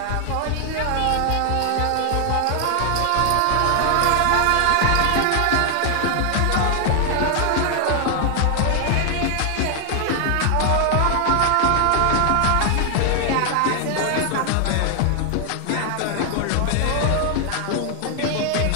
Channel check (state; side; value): different; both; correlation 0.00